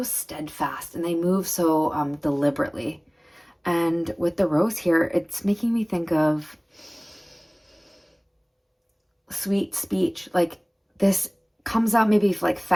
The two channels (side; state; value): both; identical; correlation 1.00